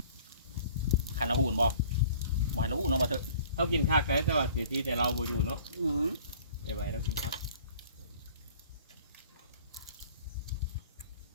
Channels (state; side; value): inverted; both; correlation -0.51